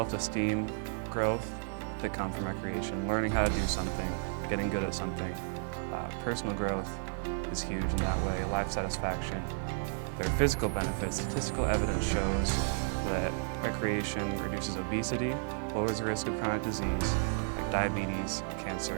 growth that come from recreation, learning how to do something, getting good at something. Personal growth is huge in that way, life satisfaction. There are physical benefits. Statistical evidence shows that recreation reduces obesity, lowers the risk of chronic disease, like diabetes,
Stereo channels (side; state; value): left; silent; 56 dB below the other